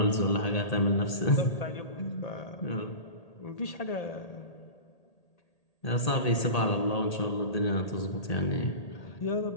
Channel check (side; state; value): right; late; 1.8 ms